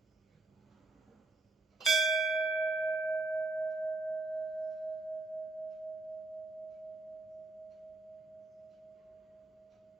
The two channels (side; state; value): left; quieter; 3.0 dB